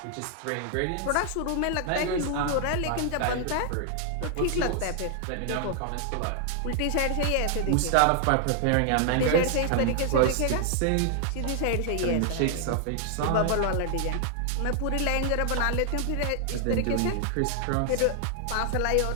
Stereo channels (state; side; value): different; both; correlation 0.00